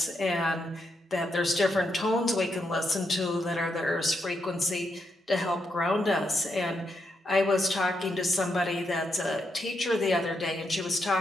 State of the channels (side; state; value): both; normal; correlation 0.81